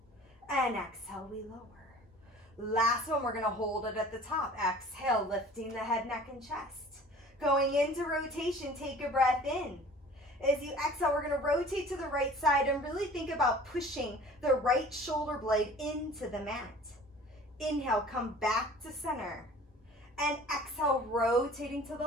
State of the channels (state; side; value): normal; both; correlation 0.47